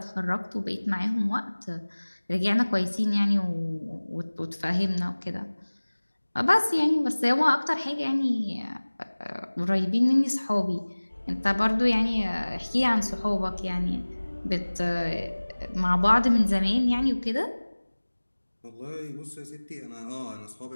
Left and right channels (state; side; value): inverted; both; correlation -1.00